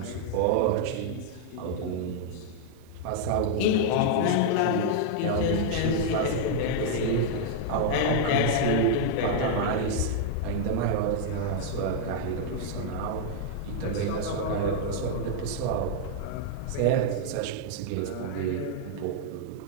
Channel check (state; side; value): different; both; correlation -0.01